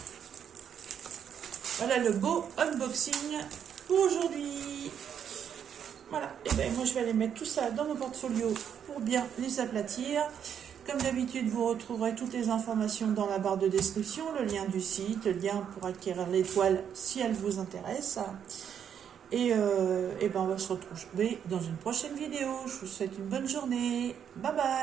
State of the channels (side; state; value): left; quieter; 8.4 dB